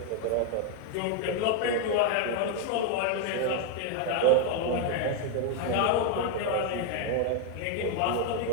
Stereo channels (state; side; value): different; both; correlation 0.01